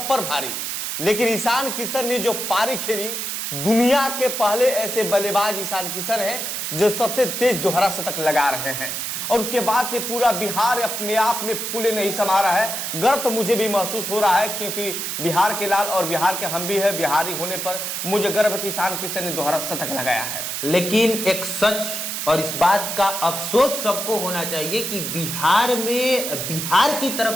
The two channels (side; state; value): right; noise; hiss, 3 dB below the sound